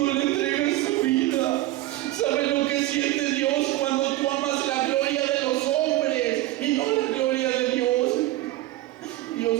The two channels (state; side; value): quieter; left; 16.6 dB